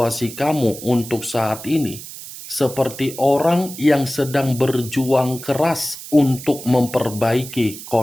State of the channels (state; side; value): noise; right; hiss, 13 dB below the sound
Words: kamu untuk saat ini seperti orang yang sedang berjuang keras untuk memperbaiki